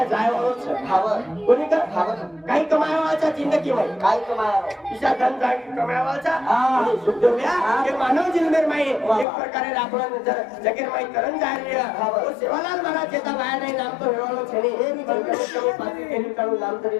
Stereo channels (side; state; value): right; drops out; at 9.2 s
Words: જાય વાળો છે ખાવર કોની કા કાઈ કમાયા છે જિંદગીમાં કાઈ કમાયા ઈશા ધન જાગી કમાયા છે સુખદેવ્યા કે માનવ જન્મે માં એક પ્રકારે આપણો જગીર માં તરણ જાય રહ્યા તો સેવાલાલ મહારાજ જેતા બાયા નામ તો હેવાળો છે ને એ બી તમે પાછી તેની તારું નામ